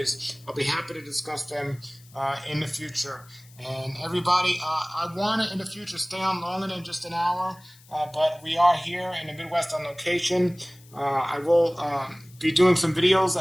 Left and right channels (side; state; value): left; noise; hiss, 25 dB below the sound